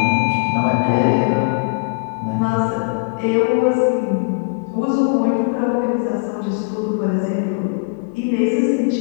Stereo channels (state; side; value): quieter; right; 38.6 dB